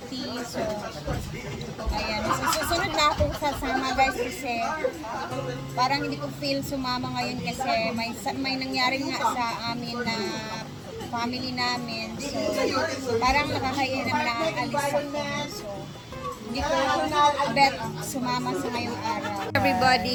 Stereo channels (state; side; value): identical; both; correlation 1.00